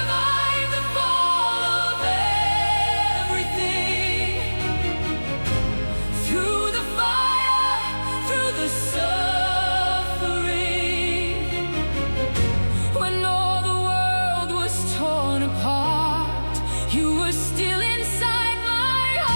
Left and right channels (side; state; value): both; inverted; correlation -1.00